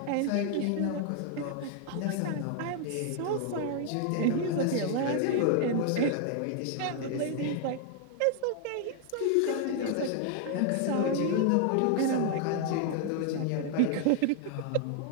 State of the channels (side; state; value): both; different; correlation 0.00